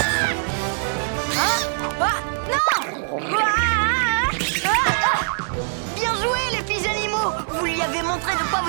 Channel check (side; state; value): left; silent; 56 dB below the other